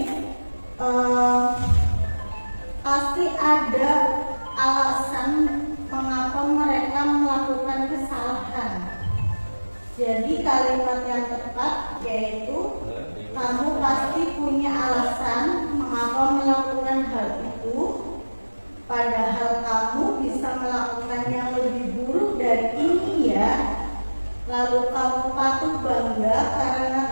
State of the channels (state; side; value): inverted; both; correlation -1.00